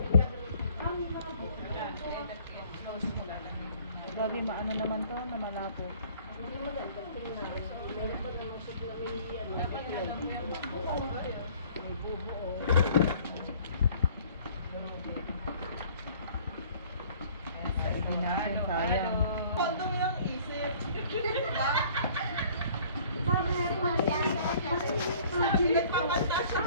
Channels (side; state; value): both; inverted; correlation -0.54